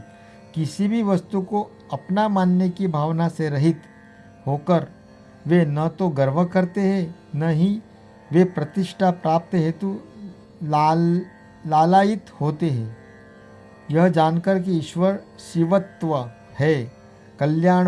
किसी भी वस्तु को अपना मानने की भावना से रहित होकर वे न तो गर्व करते हैं, न ही वे प्रतिष्ठा प्राप्त हेतु लालायित होते हैं। यह जानकर कि ईश्वर शिवत्व है,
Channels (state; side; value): identical; both; correlation 1.00